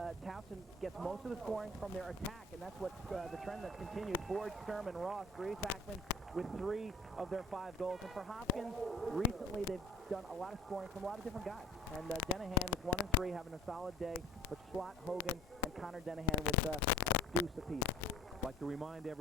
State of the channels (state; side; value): quieter; right; 3.1 dB